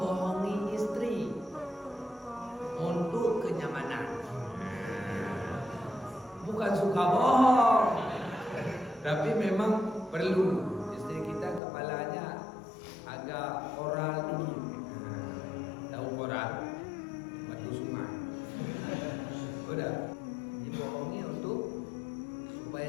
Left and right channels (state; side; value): drops out; right; at 11.6 s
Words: istri untuk kenyamanan. Bukan suka bohong, tapi memang perlu. Istri kita kepalanya agak koral tinggi. Tahu koral? Batu sungai. Udah dibohongi untuk